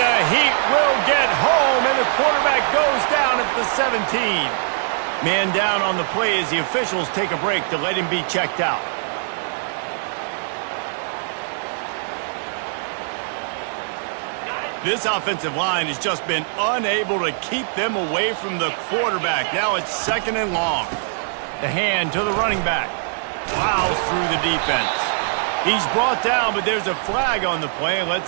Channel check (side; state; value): left; silent; 64 dB below the other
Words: Heat will get home, and the quarterback goes down at the 17. Man down on the play as the officials take a break to let him be checked out. This offensive line has just been unable to keep them away from the quarterback. Now it's 2nd and long. The hand to the running back. Plows through the defense. He's brought down, but there's a flag on the play.